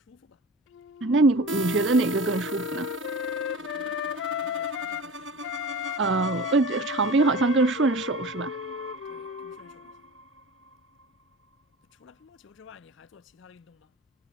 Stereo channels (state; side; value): normal; both; correlation 0.35